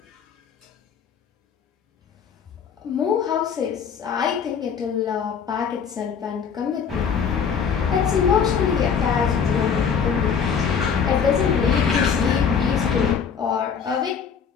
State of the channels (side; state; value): right; quieter; 6.8 dB